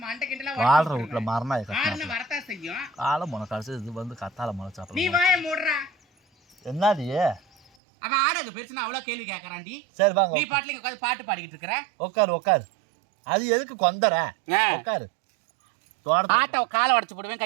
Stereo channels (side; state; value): left; drops out; at 7.7 s